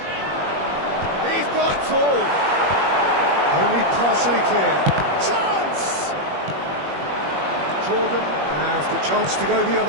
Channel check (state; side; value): late; left; 21 ms